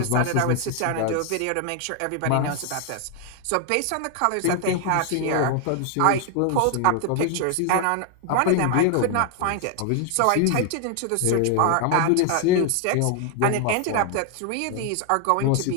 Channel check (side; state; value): both; different; correlation 0.00